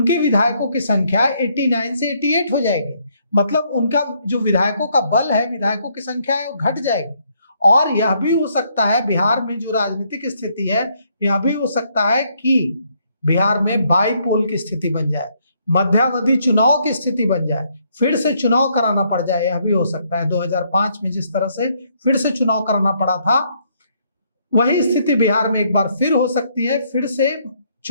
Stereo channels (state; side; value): inverted; both; correlation -0.71